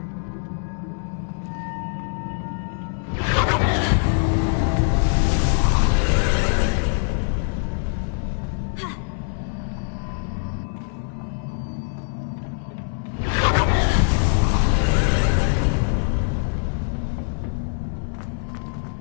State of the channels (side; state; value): right; silent; 63 dB below the other